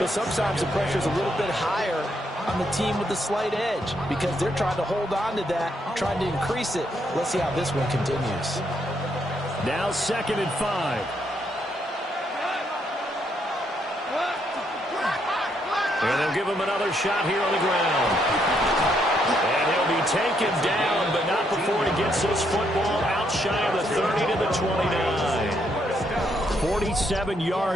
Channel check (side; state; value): both; normal; correlation 0.75